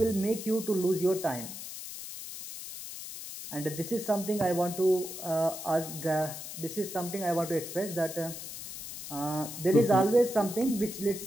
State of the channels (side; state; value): left; noise; hiss, 9 dB below the sound